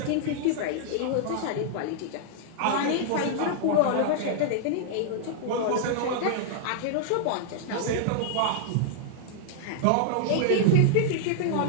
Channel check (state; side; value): different; both; correlation -0.01